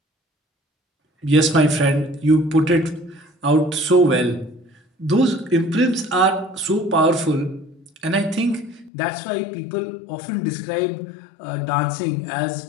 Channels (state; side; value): drops out; right; at 8.9 s